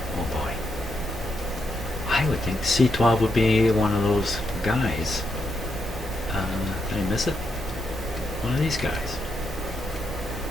boy. I would think C12 would be one of those guys. Did I miss it? One of these guys.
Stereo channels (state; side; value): normal; both; correlation 0.81